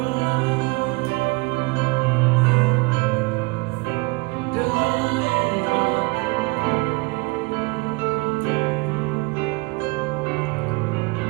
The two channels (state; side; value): quieter; left; 26.5 dB